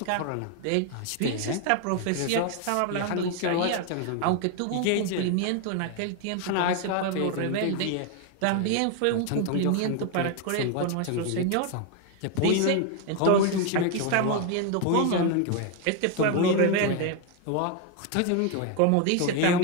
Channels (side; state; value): both; different; correlation 0.01